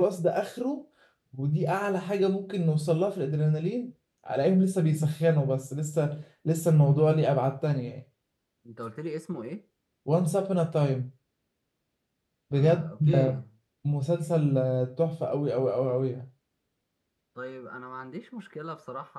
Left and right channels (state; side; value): identical; both; correlation 1.00